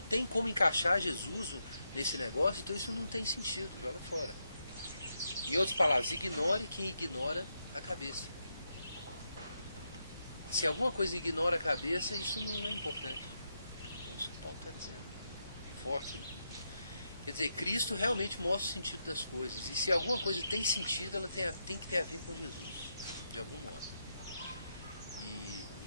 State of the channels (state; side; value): inverted; both; correlation -0.83